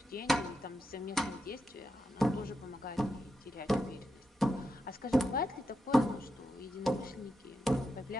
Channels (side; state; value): both; normal; correlation 0.86